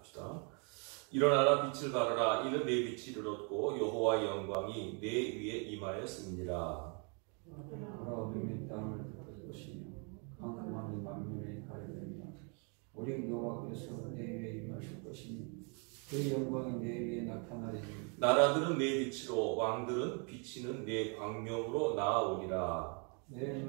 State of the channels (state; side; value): quieter; left; 36.6 dB